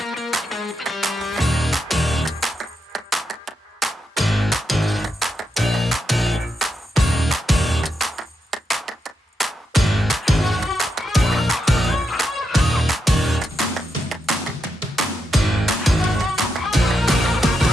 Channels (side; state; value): both; normal; correlation 0.84